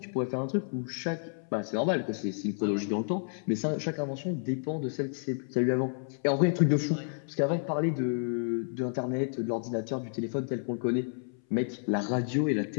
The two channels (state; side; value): silent; right; 57 dB below the other